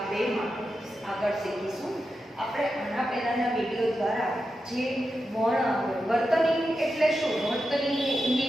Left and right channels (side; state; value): both; normal; correlation 0.89